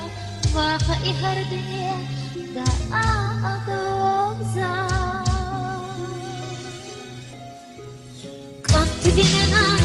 waqa i hardiya da adoza. Qat binana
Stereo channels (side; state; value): both; identical; correlation 1.00